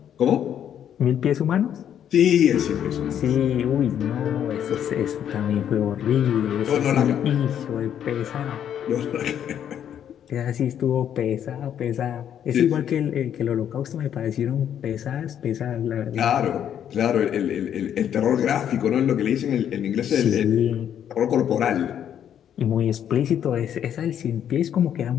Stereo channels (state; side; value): quieter; right; 9.5 dB